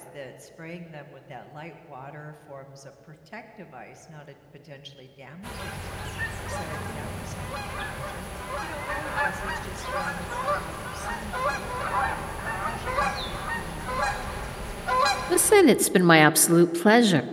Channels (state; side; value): identical; both; correlation 1.00